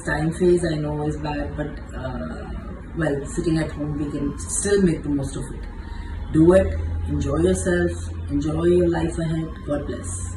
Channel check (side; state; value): both; identical; correlation 1.00